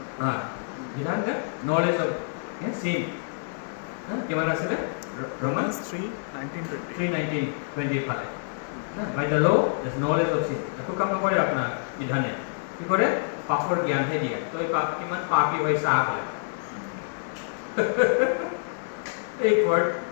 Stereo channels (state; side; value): silent; right; digital silence